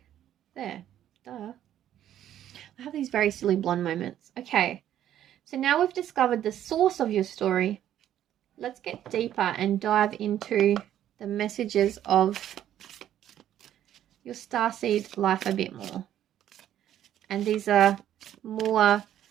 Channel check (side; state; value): left; quieter; 11.3 dB